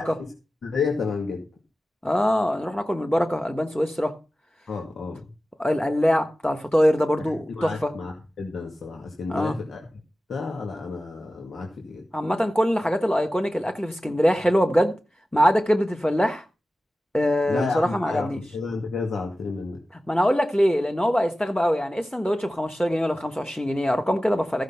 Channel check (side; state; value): both; normal; correlation 0.95